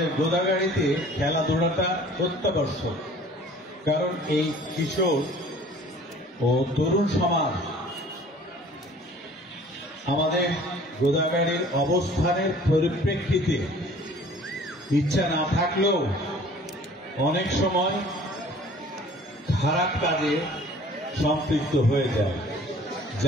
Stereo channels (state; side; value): normal; both; correlation 0.50